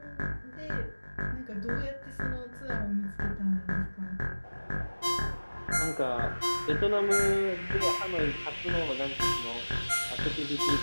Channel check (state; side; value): inverted; both; correlation -1.00